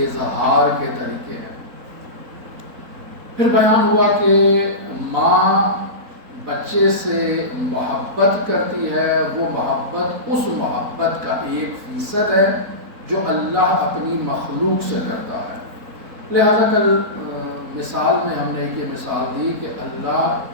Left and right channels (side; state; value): left; late; 4.1 ms